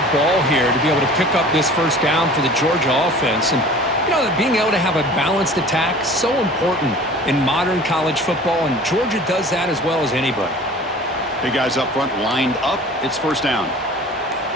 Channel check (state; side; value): normal; both; correlation 0.44